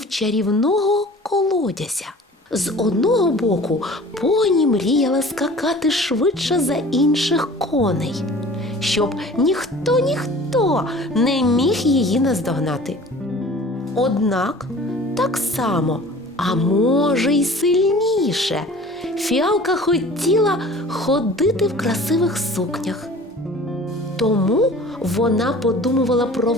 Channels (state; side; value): normal; both; correlation 0.45